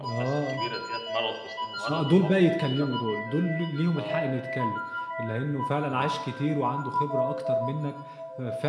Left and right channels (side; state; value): both; identical; correlation 1.00